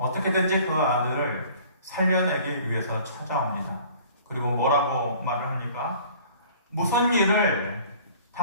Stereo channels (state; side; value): inverted; both; correlation -0.50